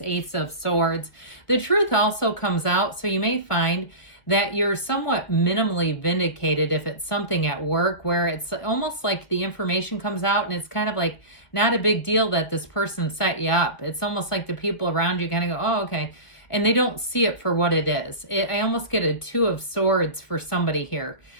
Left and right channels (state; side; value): late; right; 1.6 ms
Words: Ace of Swords. The truth also comes out, so you may find that you're somewhat minimally vindicated if it's something at work where it's almost like the information comes out and it's kind of like not a big deal that this person set you up. It's almost like the people around you kind of go, oh, okay. And they don't see it for what it is. I almost get a Two of Swords for somebody here.